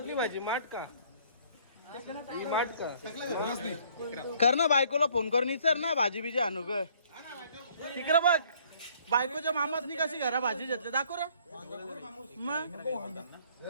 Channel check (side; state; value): both; inverted; correlation -0.60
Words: भाजी? माठ का? ही माठ का? कर ना बायकोला फोन करून विचार ना भाजी बिजी आणू ग. तिकडं बघ बायकोच्या मामासनी कशी घरा भाजी घेतली दाखव रे. मग